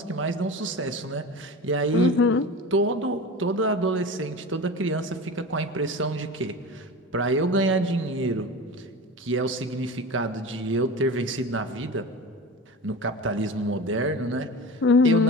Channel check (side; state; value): both; normal; correlation 0.31